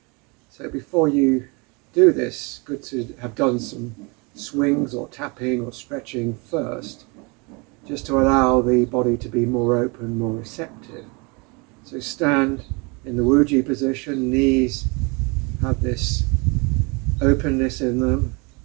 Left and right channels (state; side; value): quieter; left; 29.7 dB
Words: So before you do this, good to have done some swings or tapping or stretching first, just to allow the body to be more open, more receptive. So stand in the Wuji position, knees have this openness in them,